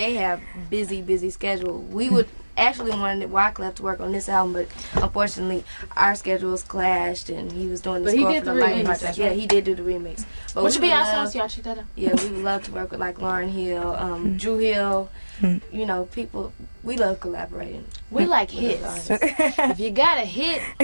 have busy schedule. We would actually wanted Wyclef to work on this album, but unfortunately our schedules clashed, and he was doing the score for the Lightning Project. Yeah, he did do the remix. But which would be awesome. Y'all check that out. Yeah, we would love to work with like Lauryn Hill, Drew Hill. You know, people. We love collaborating. We like hits. If you got a hit,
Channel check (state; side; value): inverted; both; correlation -1.00